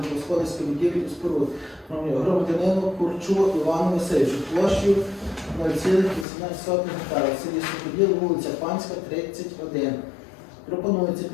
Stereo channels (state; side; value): drops out; right; at 6.2 s